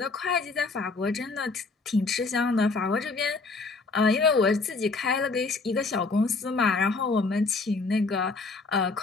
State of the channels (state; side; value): quieter; right; 3.9 dB